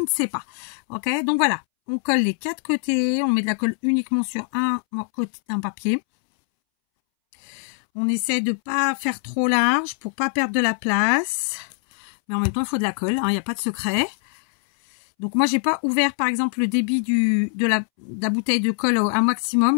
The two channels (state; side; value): silent; right; 64 dB below the other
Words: ne sais pas. Ok, donc voilà. On colle les 4 côtés. On met de la colle uniquement sur un côté d'un papier. On essaie de ne pas faire trop large pour pas perdre de la place. Mais en même temps, il faut de la colle. Il n'y a pas de secret. Donc moi, j'ai pas ouvert par exemple le débit de la bouteille de colle à